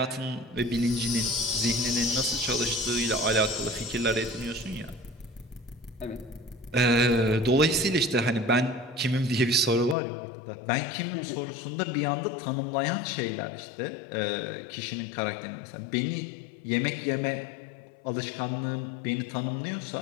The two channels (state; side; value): drops out; right; at 10.0 s